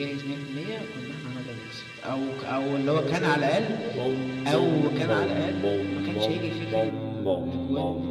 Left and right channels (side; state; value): both; identical; correlation 1.00